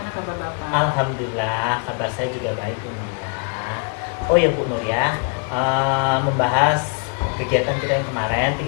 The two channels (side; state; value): right; quieter; 38.2 dB